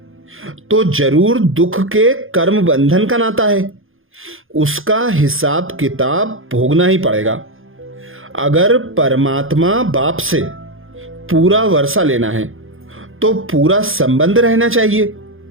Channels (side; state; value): left; late; 0.59 ms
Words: तो जरूर दुख के कर्म बंधन का नाता है। उसका हिसाब किताब भोगना ही पड़ेगा। अगर परमात्मा बाप से पूरा वर्षा लेना है तो पूरा संबंध रहना चाहिए।